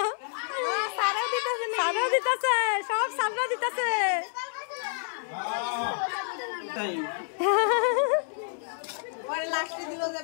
সারও দিতেছে, সব সাররা দিতেছে। পরে লাস্টে দিল যে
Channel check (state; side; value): silent; right; digital silence